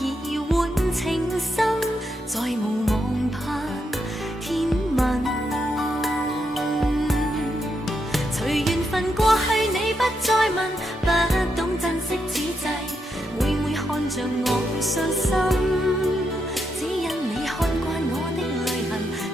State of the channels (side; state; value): both; normal; correlation 0.82